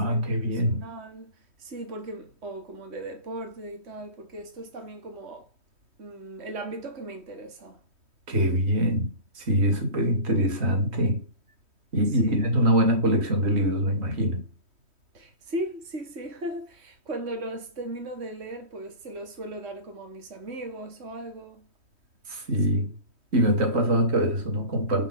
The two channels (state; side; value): late; left; 3.1 ms